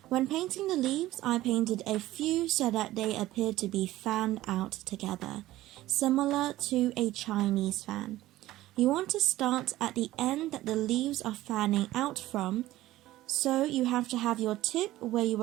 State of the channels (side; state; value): left; quieter; 15.9 dB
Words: When painting the leaves, I painted a few so that they appeared to be fanned out together, similar to a Chinese fan. You want to start at the end that the leaves are fanning out from, So you have to have your tip where you